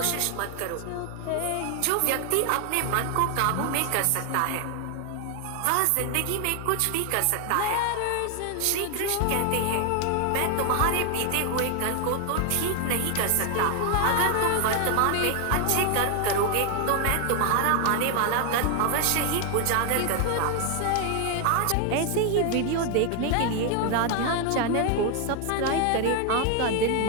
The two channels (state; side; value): different; both; correlation 0.00